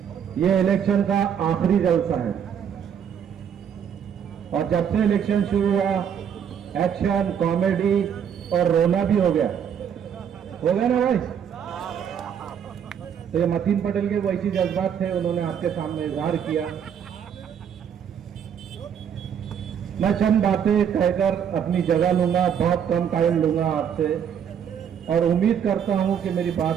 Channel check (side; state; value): left; quieter; 8.3 dB